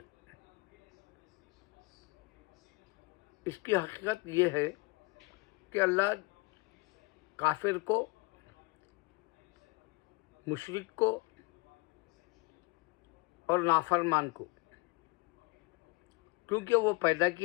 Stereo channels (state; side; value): quieter; right; 26.2 dB